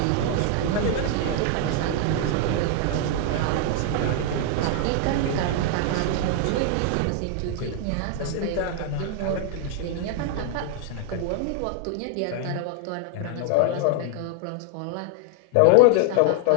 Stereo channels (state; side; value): different; both; correlation 0.00